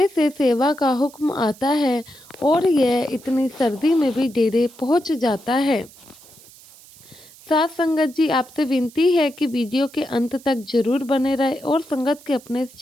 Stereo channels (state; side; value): noise; right; hiss, 23 dB below the sound